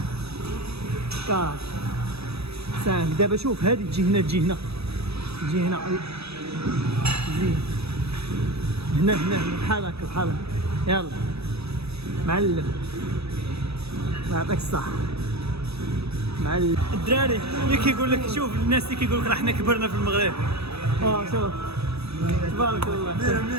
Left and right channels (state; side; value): late; left; 0.78 ms